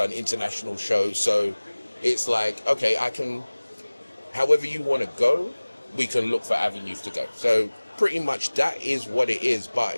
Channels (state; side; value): inverted; both; correlation -1.00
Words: international shows. So it's like, okay, I can, however you want to go, we can look for avenues to go. So pretty much that is what it is. But